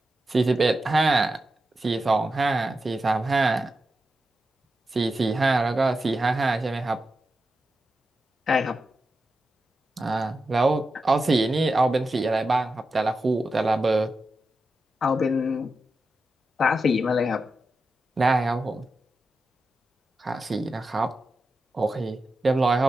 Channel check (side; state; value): both; normal; correlation 0.90